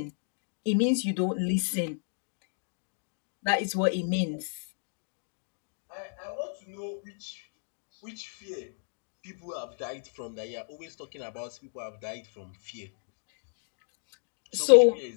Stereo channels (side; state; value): right; silent; digital silence